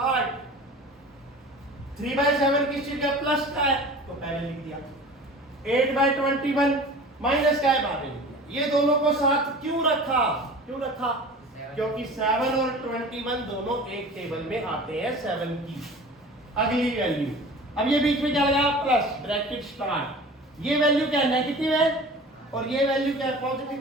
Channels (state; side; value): normal; both; correlation 0.40